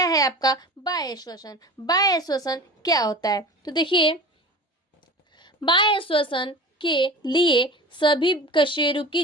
है आपका बाह्य श्वसन। बाह्य श्वसन क्या होता है, तो देखिए बाह्य श्वसन के लिए सभी कशेरुकी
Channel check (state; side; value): normal; both; correlation 0.36